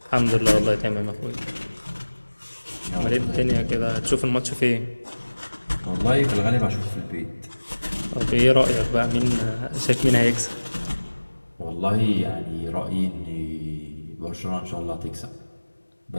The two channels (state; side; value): inverted; both; correlation -1.00